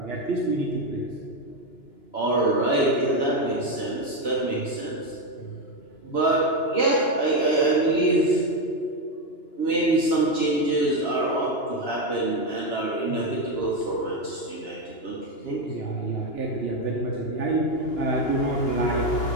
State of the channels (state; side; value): late; right; 2.9 ms